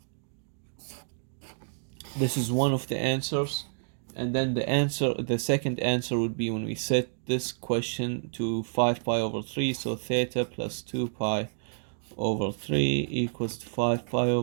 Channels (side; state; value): left; silent; digital silence